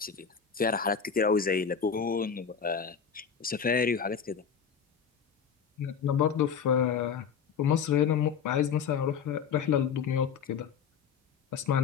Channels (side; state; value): right; quieter; 7.0 dB